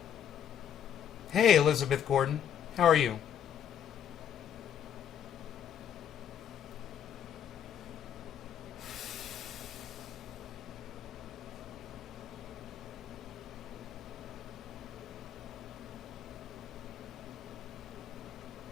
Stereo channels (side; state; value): right; quieter; 9.0 dB